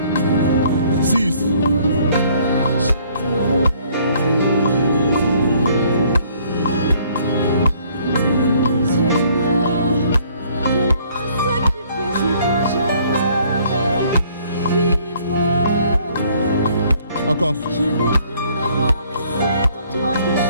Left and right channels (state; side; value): inverted; both; correlation -0.61